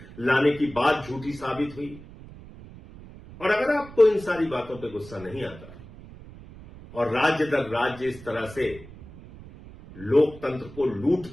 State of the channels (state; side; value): noise; right; rumble, 17 dB below the sound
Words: लाने की बात झूठी साबित हुई, और अगर आपको इन सारी बातों पे गुस्सा नहीं आता और राज्य दर राज्य इस तरह से लोकतंत्र को लूट